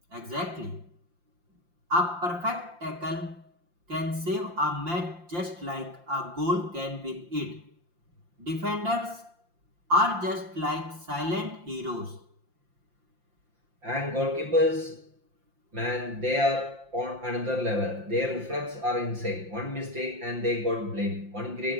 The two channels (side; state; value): left; late; 5.7 ms